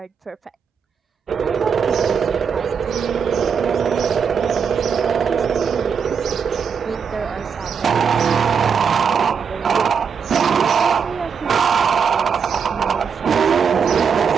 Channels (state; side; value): quieter; left; 6.6 dB